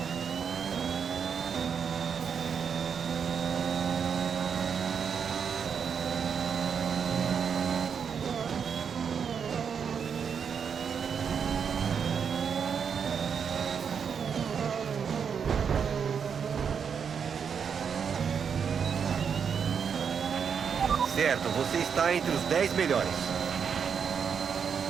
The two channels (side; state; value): left; quieter; 6.9 dB